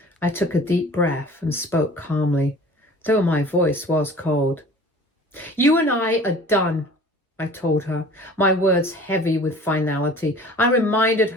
I took a deep breath and spoke calmly, though my voice was cold. You and I are done, I told her, my words heavy with finality. I reminded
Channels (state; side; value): normal; both; correlation 0.45